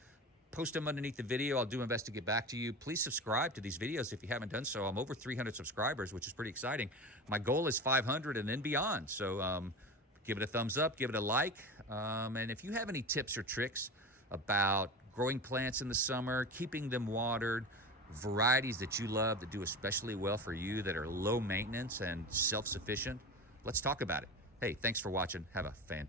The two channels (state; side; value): normal; both; correlation 0.28